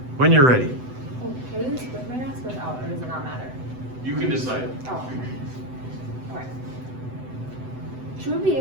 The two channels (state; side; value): late; left; 7.9 ms